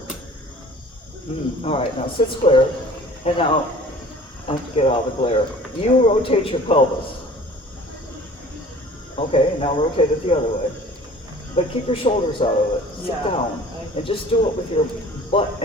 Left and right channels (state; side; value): normal; both; correlation 0.48